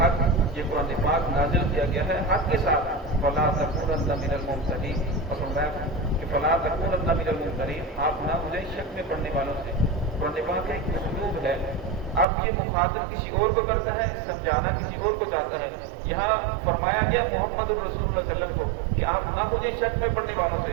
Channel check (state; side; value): drops out; left; at 12.2 s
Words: یہ قرآن پاک نازل کیا گیا ہے حق کے ساتھ. فلا تکونن من الممترین, اور فرمایا کہ فلا تکونن من الممترین, آپ نہ ہو جائیں شک میں پڑھنے والوں سے. قرآن پاک کا ایک اسلوب ہے, اب یہ مخاطب کسی اور کو کرتا ہے, سمجھانا کسی اور کو چاہتا ہے. یہاں فرمایا گیا محمد رسول اللہ صلی اللہ علیہ وسلم کو کہ آپ نہ مجھے شک میں پڑھنے والوں سے,